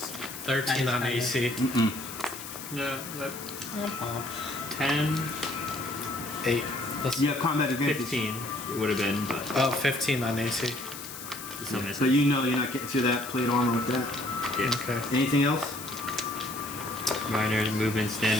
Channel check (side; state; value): left; noise; hiss, 11 dB below the sound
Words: 13 on Nice. AC. Yeah. 10, 8. You have combat advantage. 15 it would have been, but Oh, 15 on AC. still So missing. you know you're not getting through that plate armor with that. Yeah. Okay. Anything else? Minor movement